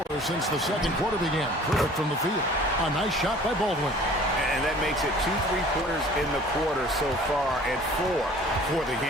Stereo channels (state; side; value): normal; both; correlation 0.49